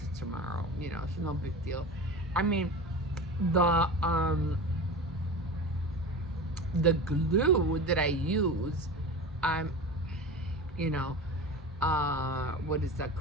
tomorrow. It's no big deal. I mean, the um the glue that I use, I'm you know what is that,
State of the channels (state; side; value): normal; both; correlation 0.31